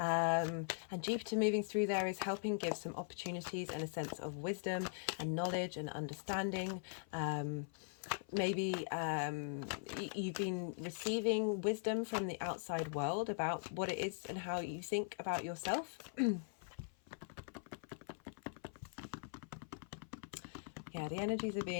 Jupiter moving through there is helping give some opportunities and a sense of wisdom and knowledge and understanding. Maybe you've been receiving wisdom from the outside world about what it is and how you think about yourself. Yeah, the energies are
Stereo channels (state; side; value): silent; right; 50 dB below the other